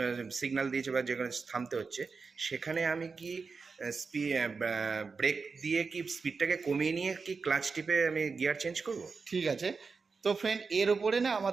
সিগন্যাল দিয়েছে বা যেখানে থামতে হচ্ছে, সেখানে আমি কি ব্রেক দিয়ে কি স্পিডটাকে কমিয়ে নিয়ে কি ক্লাচ টিপে আমি গিয়ার চেঞ্জ করব? ঠিক আছে। তো ফ্রেন্ড, এর ওপরে না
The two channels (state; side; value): quieter; left; 4.8 dB